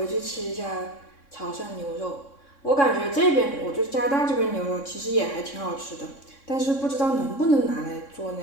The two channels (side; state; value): right; late; 3.6 ms